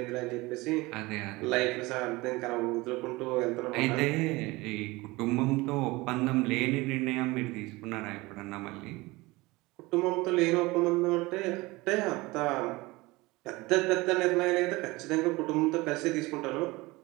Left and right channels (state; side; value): quieter; left; 21.9 dB